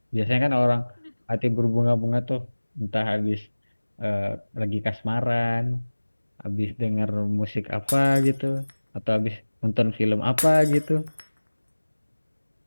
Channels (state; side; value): inverted; both; correlation -1.00